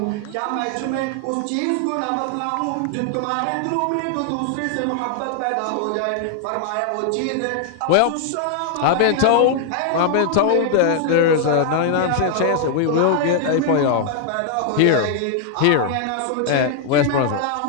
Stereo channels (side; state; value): both; different; correlation 0.00